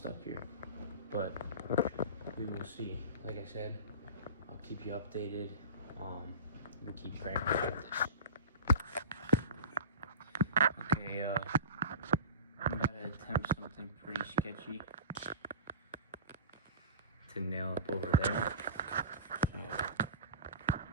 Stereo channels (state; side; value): inverted; both; correlation -0.34